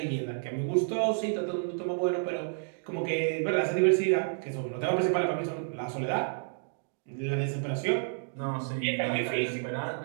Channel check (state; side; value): silent; left; digital silence